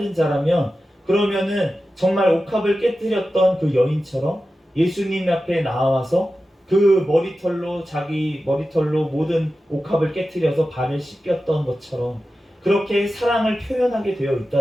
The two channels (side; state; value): both; normal; correlation 0.93